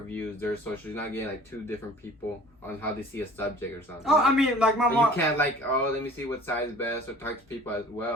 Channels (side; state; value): both; normal; correlation 0.48